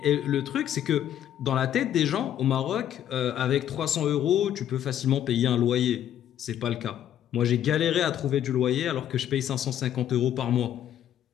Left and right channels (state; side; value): quieter; right; 10.7 dB